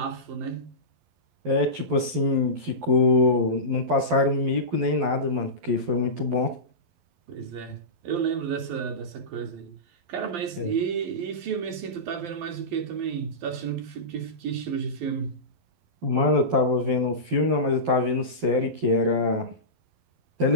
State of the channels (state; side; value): late; left; 12 ms